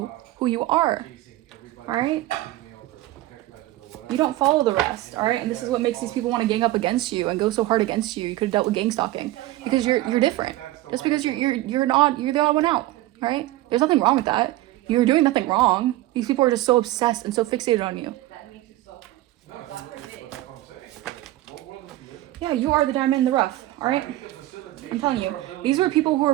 who you are, all right? You don't follow the rest, all right? And this is what makes these people want to gang up against you and go so hard against you. You could have dealt with gang stalking because you're different. Just because you're the odd one out, all right? There's nothing wrong with that. You're doing nothing wrong. These people are just so obsessed and so fixated on you. Yeah, you are the diamond in the rough, all right? I'm telling you, these were people who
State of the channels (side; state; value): left; quieter; 16.5 dB